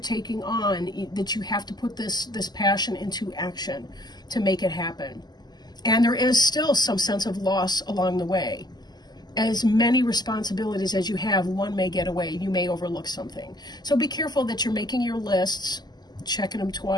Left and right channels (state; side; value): late; right; 0.20 ms